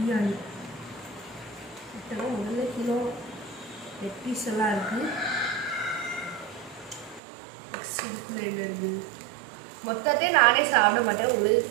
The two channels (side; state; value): left; drops out; at 7.2 s